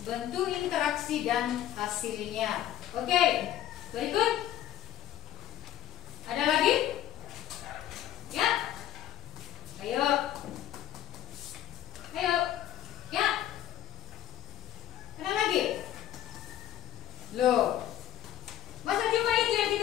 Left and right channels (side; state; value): right; quieter; 12.1 dB